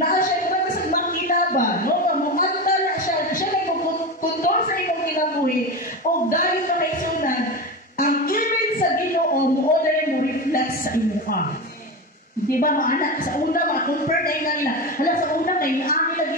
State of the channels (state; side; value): normal; both; correlation 0.21